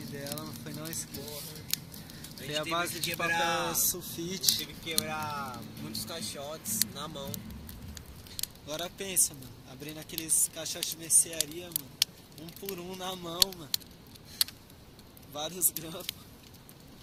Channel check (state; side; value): identical; both; correlation 1.00